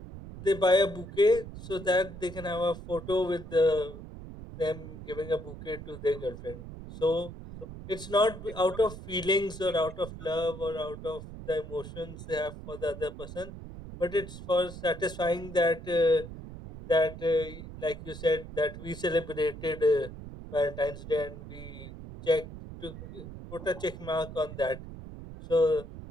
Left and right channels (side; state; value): right; noise; rumble, 12 dB below the sound